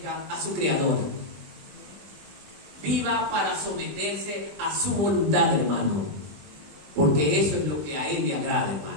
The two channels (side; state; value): left; late; 20 ms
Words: a su Creador. viva para someterse a su voluntad, hermano. Porque eso es lo que a Él le agrada,